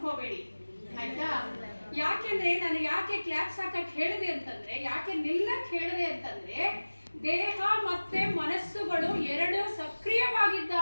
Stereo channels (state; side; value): inverted; both; correlation -1.00